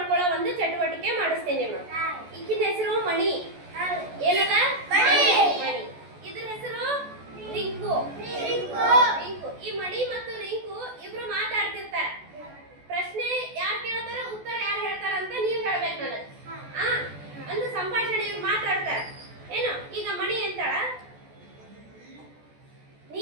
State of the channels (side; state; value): left; late; 14 ms